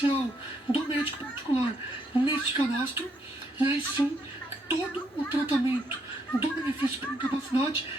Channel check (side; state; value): both; normal; correlation 0.74